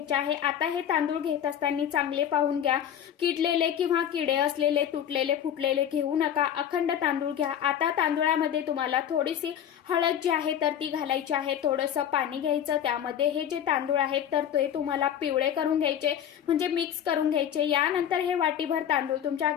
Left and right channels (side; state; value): right; quieter; 9.7 dB